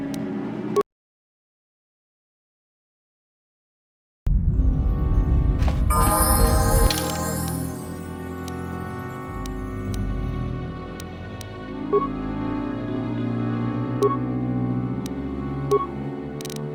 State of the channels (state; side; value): identical; both; correlation 1.00